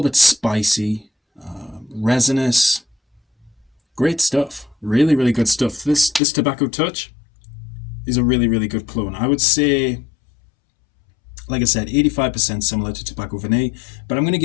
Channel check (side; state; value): right; drops out; at 6.2 s